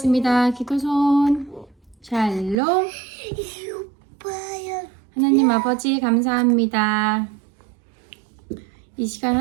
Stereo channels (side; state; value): left; drops out; at 2.6 s